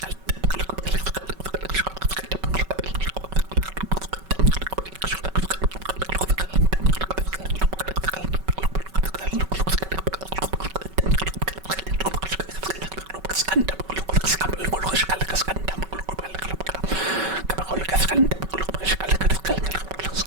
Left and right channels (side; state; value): left; late; 5.3 ms